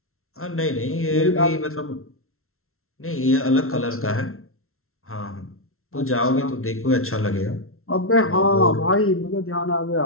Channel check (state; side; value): late; right; 0.62 ms